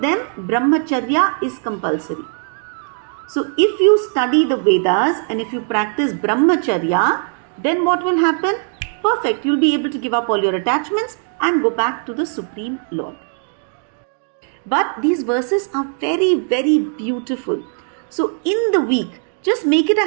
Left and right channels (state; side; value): silent; left; 56 dB below the other